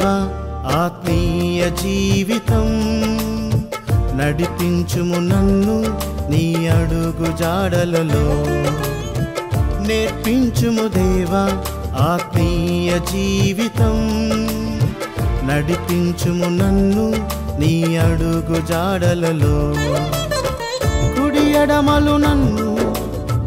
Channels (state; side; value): identical; both; correlation 1.00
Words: ఆత్మీయ జీవితం, నడిపించుము నన్ను నీ అడుగు జాడలలో. నేర్పించుము దేవా ఆత్మీయ జీవితం, నడిపించుము నన్ను నీ అడుగు జాడలలో. కుడి ఎడమలు నన్ను